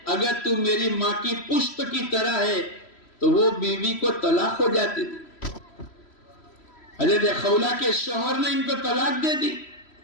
اگر تو میری ماں کی پشت کی طرح ہے تو وہ بیوی کو طلاق ہو جاتی تھی۔ حضرت خولہ کے شوہر نے ان کو طلاق دے دی۔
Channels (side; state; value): right; late; 3.0 ms